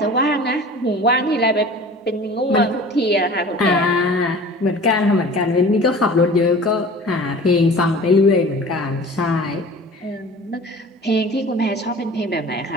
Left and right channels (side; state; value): both; normal; correlation 0.42